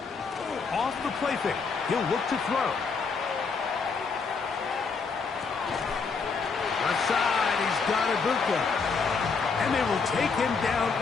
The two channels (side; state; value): right; quieter; 5.0 dB